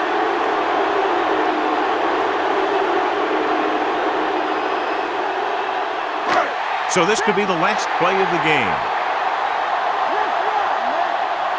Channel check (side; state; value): both; identical; correlation 1.00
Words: So this could be the last play of the game.